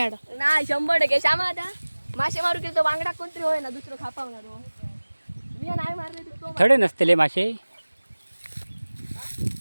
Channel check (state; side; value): inverted; both; correlation -1.00